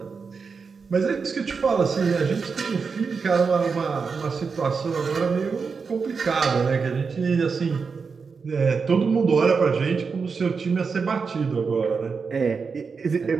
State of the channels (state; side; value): quieter; left; 5.2 dB